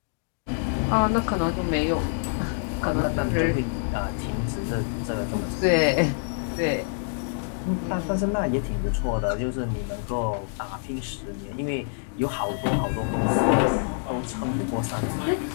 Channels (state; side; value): silent; right; digital silence